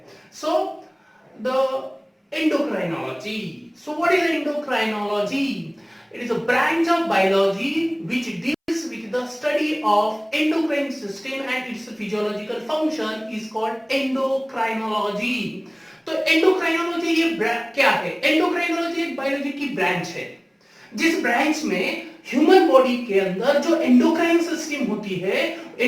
So the endocrinology. So what is endocrinology? It is a branch of biology which deals with the study of endocrine system and its physiological function is called endocrinology. तो endocrinology ये क्या है? endocrinology एक biology की branch है जिस branch में human body के अंदर जो एंडोक्राइन सिस्टम होती है,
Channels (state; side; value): identical; both; correlation 1.00